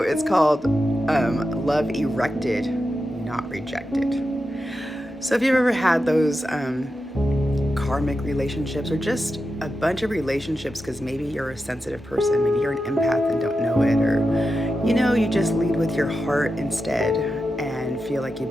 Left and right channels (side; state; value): both; normal; correlation 0.90